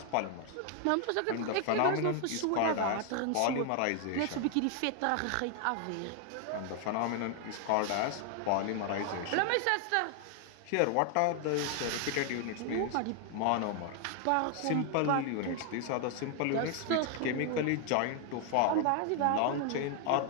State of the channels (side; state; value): both; different; correlation 0.00